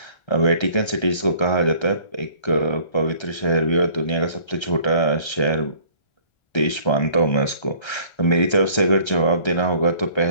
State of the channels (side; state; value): right; late; 1.3 ms